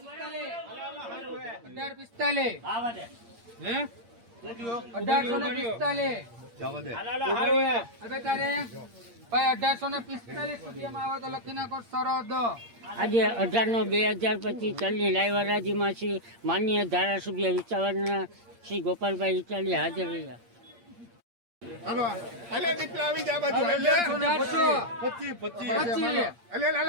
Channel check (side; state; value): left; late; 8.6 ms